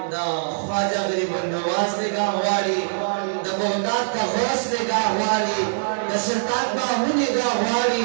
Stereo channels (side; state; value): left; silent; 56 dB below the other